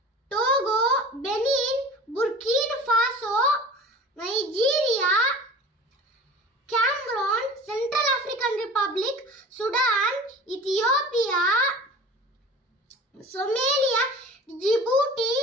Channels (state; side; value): normal; both; correlation 0.40